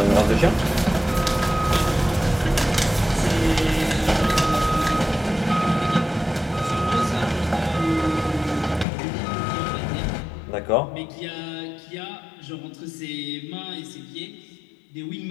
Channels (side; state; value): right; drops out; at 8.8 s